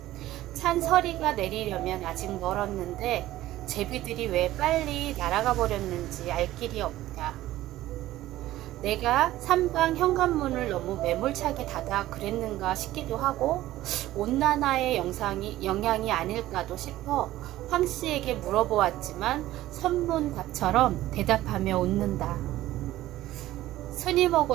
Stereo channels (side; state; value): left; quieter; 15.2 dB